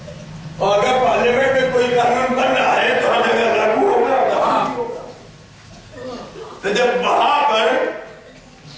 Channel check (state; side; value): identical; both; correlation 1.00